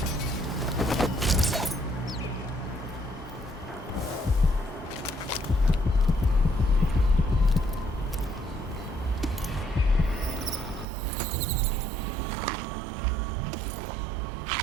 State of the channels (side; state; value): left; drops out; at 10.9 s